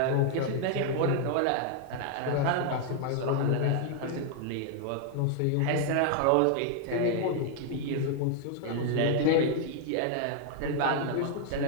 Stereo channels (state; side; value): different; both; correlation 0.00